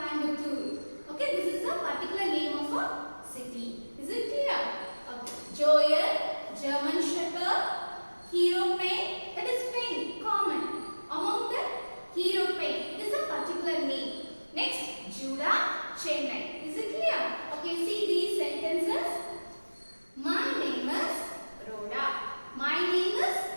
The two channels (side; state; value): both; inverted; correlation -1.00